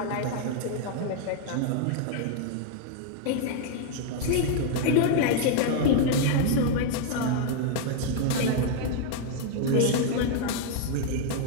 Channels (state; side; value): different; both; correlation 0.00